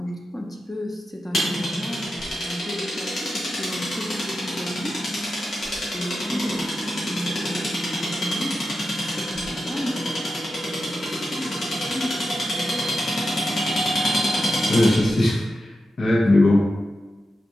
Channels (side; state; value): both; normal; correlation 0.90